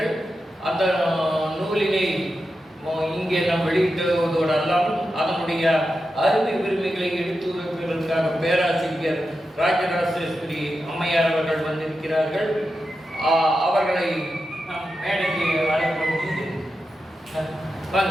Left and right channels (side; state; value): both; normal; correlation 0.90